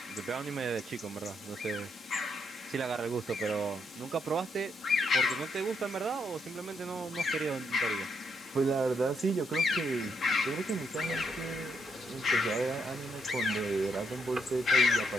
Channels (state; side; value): normal; both; correlation 0.77